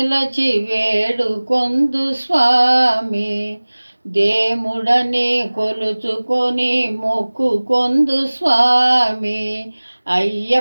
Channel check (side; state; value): both; inverted; correlation -1.00